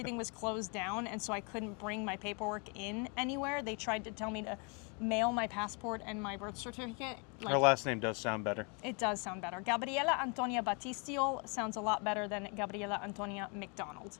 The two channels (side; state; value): right; quieter; 34.4 dB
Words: was closed down, and so I couldn't bring my paperwork in anywhere. They tried to tell me to mail my passport and my birth certificate. Her last name does sound better. It does sound better. Gabriela Antonia Battistiol sounds a lot better than Gabriela Antonia McDonald.